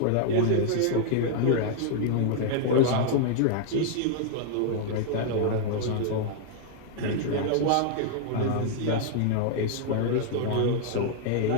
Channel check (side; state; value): both; different; correlation 0.00